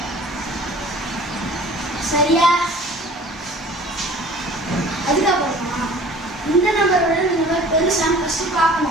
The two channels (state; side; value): normal; both; correlation 0.47